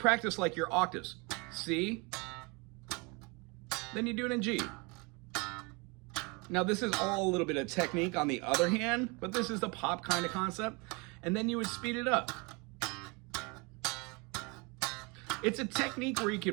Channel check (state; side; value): quieter; left; 29.0 dB